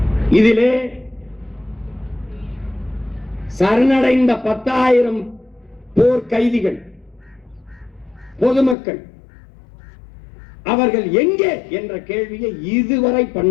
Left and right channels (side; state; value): right; drops out; at 8.8 s